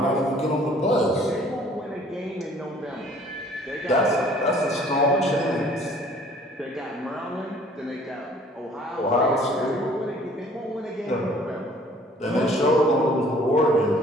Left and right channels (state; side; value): normal; both; correlation 0.55